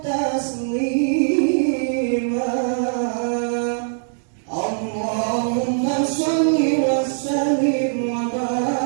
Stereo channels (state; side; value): silent; left; digital silence